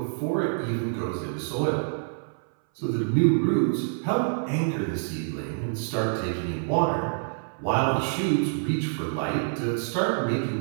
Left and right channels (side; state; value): left; silent; 60 dB below the other